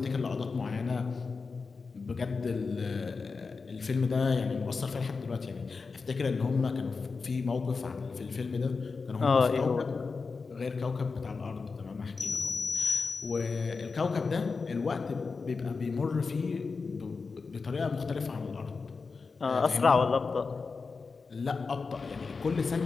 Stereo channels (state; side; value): quieter; right; 4.6 dB